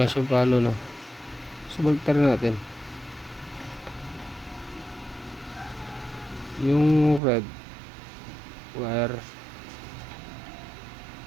siyang palo, no? So baliktad natin. Yung red wire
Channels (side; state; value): left; drops out; at 7.2 s